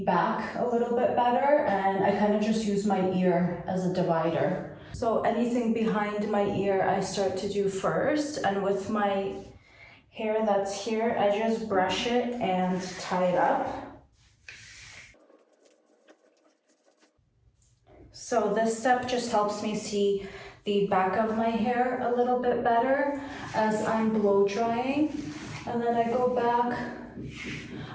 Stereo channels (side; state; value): both; identical; correlation 1.00